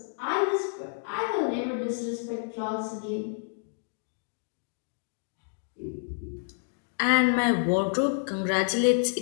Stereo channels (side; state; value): right; silent; digital silence